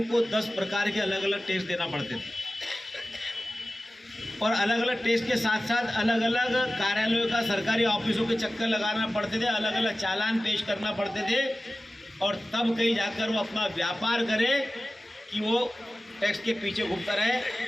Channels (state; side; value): normal; both; correlation 0.96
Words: को 10 प्रकार के अलग अलग टैक्स देना पड़ते थे और अलग अलग टैक्स के साथ साथ अलग अलग कार्यालयों का सरकारी ऑफिसों के चक्कर लगाना पड़ते थे, अलग अलग चालान पेश करना पड़ते थे और तब कहीं जाकर वो अपना व्यापार करे कि वो टैक्स के पीछे घूमता